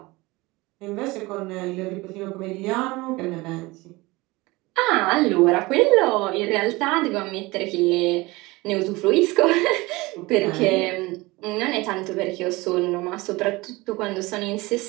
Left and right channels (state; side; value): quieter; left; 22.1 dB